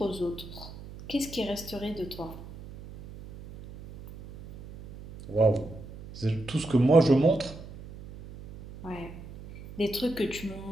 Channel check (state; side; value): noise; right; hum, 15 dB below the sound